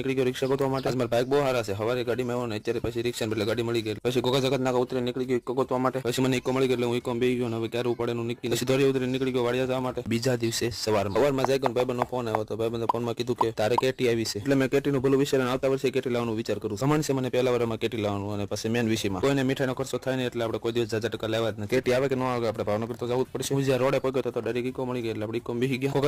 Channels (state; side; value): identical; both; correlation 1.00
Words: ગયો રિક્ષા ગોતવા માટે. મારા બાઇક બહુ સારા છે. સવારે ગાડીમાં આવ્યો ને અત્યારે પછી રિક્ષા એટલે ગાડી મળી ગઈ. પછી ગોગા જગત નાકા ઉતરી નીકળી ગયો ઇકો ગોતવા માટે. પછી મને ઇકો મળી ગઈ એટલે હું ઇકો બેસી ગયો. હવે ક્યારે પડે નું નીકળી. પછી દોરી ઉતરી નીકળી ગયો વાડિયા જવા માટે. બીજા દિવસે સવારમાં જાય ગયો ભાઈબંધનો ફોન આવ્યો હતો. ભાઈબંધે ફોનમાં કીધું કે તારે કેટી આવી છે. એટલે મેં કેટીનું ભલું વિચારીને આવતા વર્ષે કેટી લાવવાનો વિચાર કરું. સમાન છે મને પહેલા વર્ષમાં કેટી લાવવાનું અને પછી મેન વિષયમાં કોઈને મીઠાઈનો ખર્ચો થાય ને એટલે આપણે કોઈ દિવસ 1000 લેવા જ ને. કેટી આવે કે ન આવે આપણે ભાવનગર તો જવું જ પડશે. હું જ્યાં રોડે પગ્યો તો ડાયરેક્ટ ઇકો મળી ગઈ એટલે આપણે ઇકો બેસી ગયા.